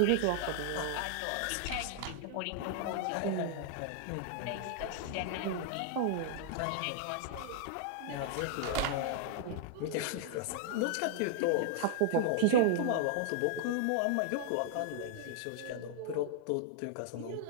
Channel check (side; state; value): both; different; correlation -0.01